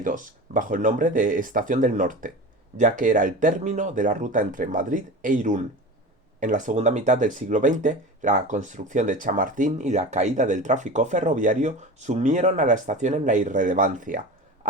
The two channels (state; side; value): normal; both; correlation 0.31